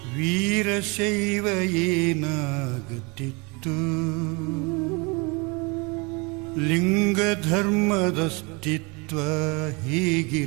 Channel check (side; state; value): left; quieter; 28.8 dB